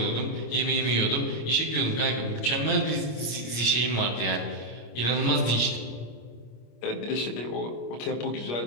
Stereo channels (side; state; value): right; late; 25 ms